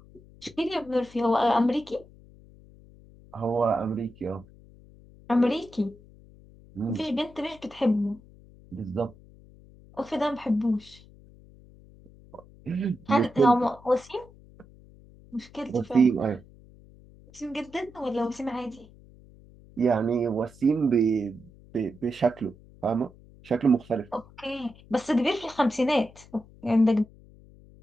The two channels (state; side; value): noise; left; hum, 23 dB below the sound